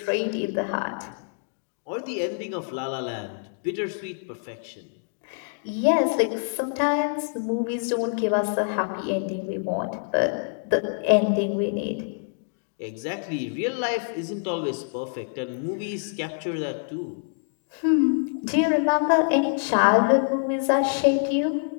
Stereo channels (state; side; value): silent; right; digital silence